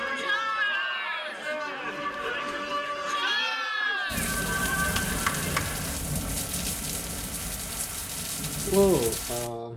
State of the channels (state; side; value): identical; both; correlation 1.00